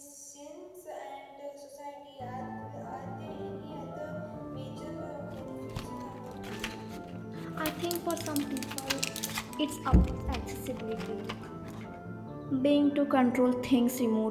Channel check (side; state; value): both; identical; correlation 1.00